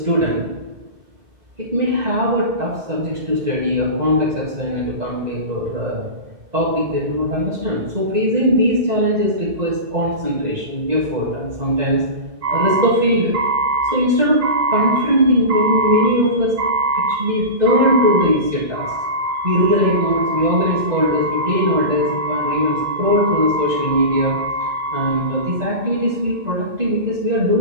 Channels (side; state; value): left; late; 2.1 ms